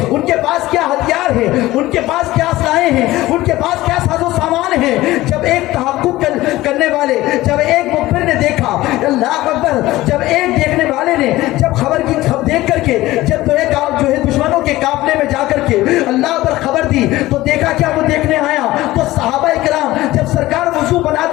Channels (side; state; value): right; quieter; 17.3 dB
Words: उनके पास क्या हथियार है, उनके पास क्या असलाहें हैं, उनके पास क्या साजो सामान है। जब एक तहक्कुक करने वाले, जब एक मुखबिर ने देखा, अल्लाह अकबर, जब एक देखने वाले ने जब खबर की देख करके जब तो एक जो है दुश्मनों के काफले में जाकर के अल्लाह पर खबर दी तो देखा क्या वो देखने आया तो सहाबा इकराम जब सरकार वुजू